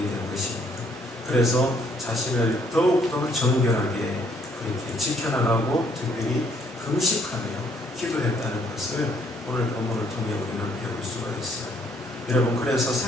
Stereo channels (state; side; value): normal; both; correlation 0.67